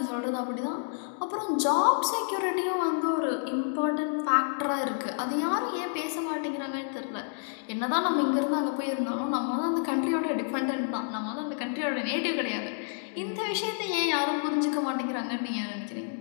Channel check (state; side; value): silent; right; digital silence